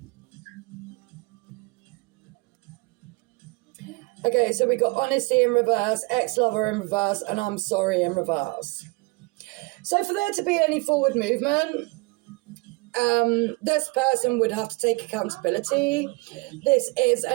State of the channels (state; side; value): quieter; left; 27.2 dB